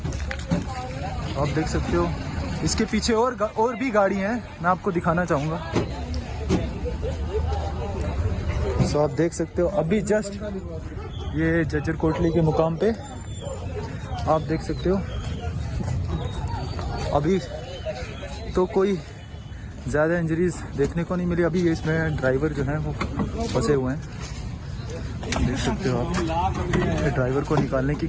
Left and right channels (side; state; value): both; identical; correlation 1.00